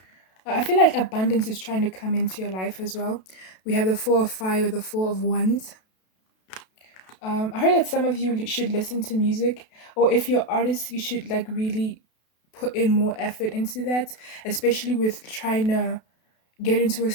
I feel like abundance is trying to come into your life as well. We have the Four of Fire or the Four of Wands. I heard that some of you should listen to music, or if you're artists, you should like really put in more effort into that, especially with trying to get into a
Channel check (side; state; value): right; late; 32 ms